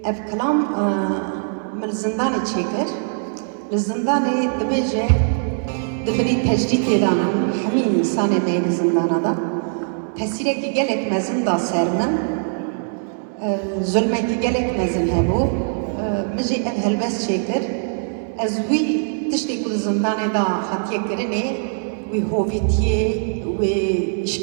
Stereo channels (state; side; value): silent; left; digital silence